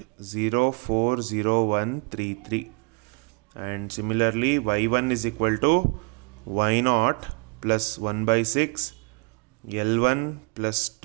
and similarly Y1 is equal to Y naught plus 1 by 6 L1 plus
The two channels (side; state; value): left; quieter; 32.2 dB